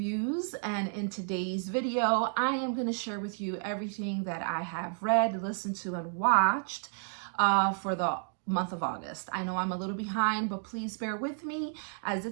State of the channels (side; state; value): left; silent; 57 dB below the other